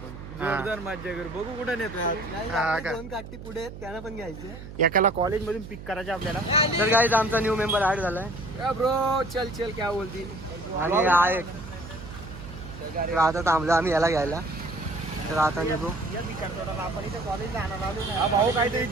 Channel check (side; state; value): right; noise; hum, 13 dB below the sound